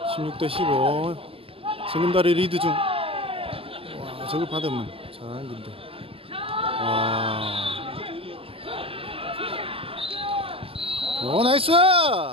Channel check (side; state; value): left; late; 0.27 ms